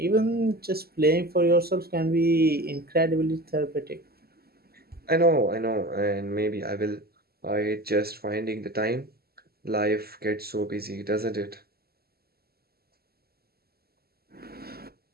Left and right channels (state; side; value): late; left; 0.45 ms